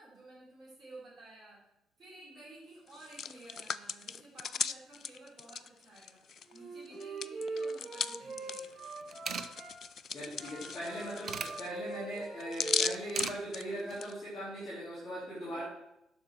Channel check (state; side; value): normal; both; correlation 0.72